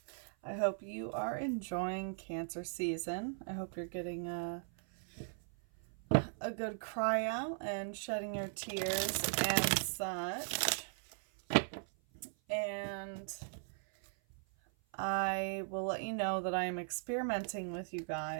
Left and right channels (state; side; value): silent; left; 52 dB below the other